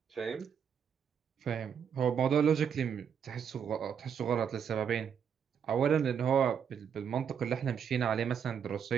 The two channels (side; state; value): left; quieter; 7.6 dB